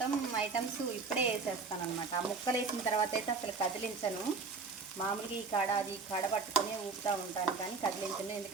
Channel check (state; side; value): quieter; left; 4.5 dB